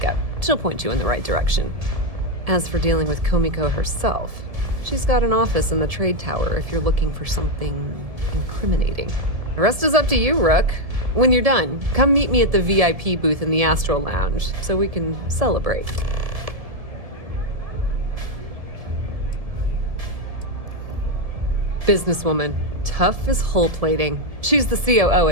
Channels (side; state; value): left; late; 1.7 ms